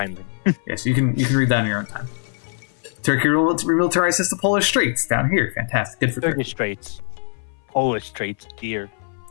Yeah, so you can read that in your own time. Turkey remilitarizes the Polish Straits down here. Fantastic. Good for Turkey. Turkish Straits. Polish Straits, dear.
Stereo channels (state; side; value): silent; right; 59 dB below the other